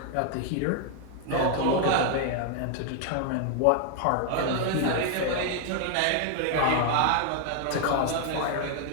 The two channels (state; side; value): different; both; correlation 0.00